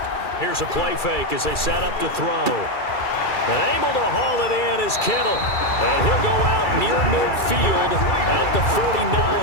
Here's a play fake as they set up to throw. And able to haul it in is Kittle. And he'll go out near midfield at the 49.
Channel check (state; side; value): late; right; 2.3 ms